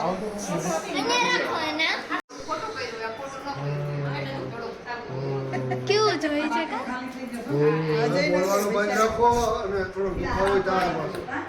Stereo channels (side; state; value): both; identical; correlation 1.00